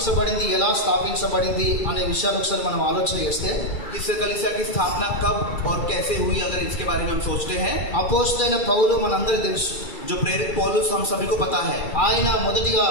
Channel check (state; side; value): late; right; 2.4 ms